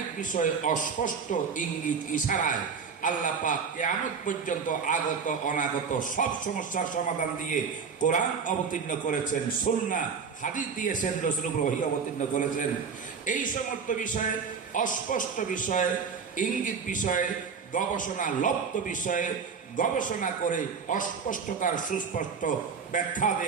বিষয় অস্পষ্ট ইঙ্গিত ইশারায় আল্লাহ পাক কিয়ামত পর্যন্ত আগত অনাগত সব সমস্যার সমাধান দিয়ে কোরআন অবতীর্ণ করেছেন, সুন্নাহ হাদিস দিয়েছেন, রাসূলুল্লাহ ওহী অবতীর্ণ করেছেন। এই সমস্ত বিষয়ে, অস্পষ্ট বিষয়ে, ইঙ্গিত বিষয়ে, গবেষণা লব্ধ বিষয়ে গবেষণা করে অস্পষ্টতার সুস্পষ্ট ব্যাখ্যা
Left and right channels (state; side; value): quieter; left; 5.9 dB